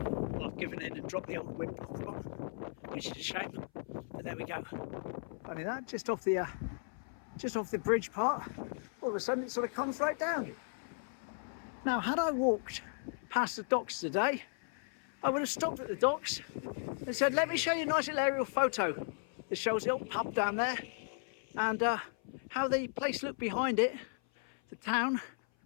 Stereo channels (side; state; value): right; silent; 54 dB below the other